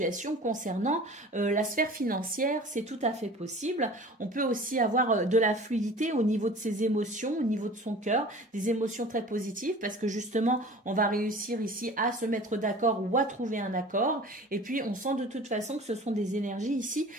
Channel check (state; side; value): normal; both; correlation 0.42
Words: concernant la sphère financière. C'est tout à fait possible. On peut aussi avoir de la fluidité au niveau de ses émotions, au niveau de son cœur, des émotions très positives parce que justement, on va réussir ici à se mettre d'accord ou à trouver un accord. Et puis, on sent de toute façon que ce sont des énergies ici